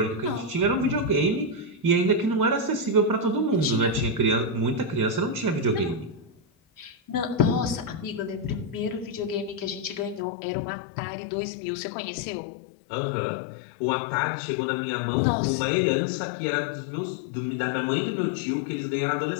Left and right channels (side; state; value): right; drops out; at 10.2 s